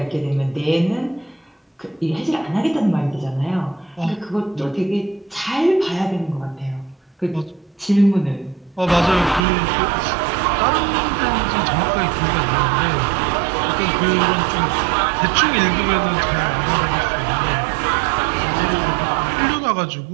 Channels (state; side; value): drops out; left; at 9.4 s